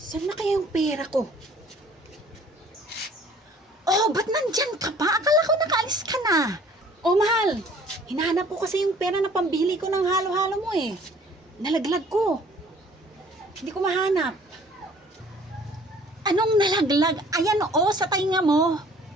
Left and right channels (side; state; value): both; normal; correlation 0.54